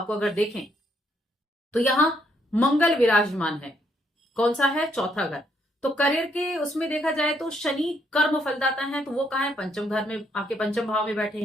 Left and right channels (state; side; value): normal; both; correlation 0.73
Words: को अगर देखें तो यहां मंगल विराजमान है। कौन सा है? चौथा घर। तो करियर के उसमें देखा जाए तो शनि कर्म फलदाता है, तो वो कहाँ है? पंचम घर में, आपके पंचम भाव में बैठे